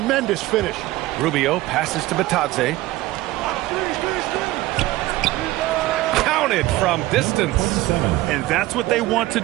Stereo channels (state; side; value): quieter; left; 17.6 dB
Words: finish. Rubio passes to Bitadze. Counted from distance. And that's what they want to